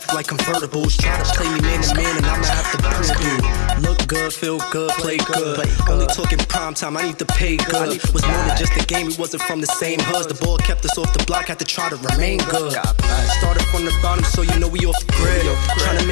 like convertibles. Try to play me man to man, and I'ma have to prove you. Look good, feel good, play good. Only talking prime time, I need to pay good. Was more than just a game, we wasn't from the same hoods. The ball kept us off the block, had to try to remain good. Started from the bottom, so you know we off the grid. Trying to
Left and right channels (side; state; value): right; silent; 62 dB below the other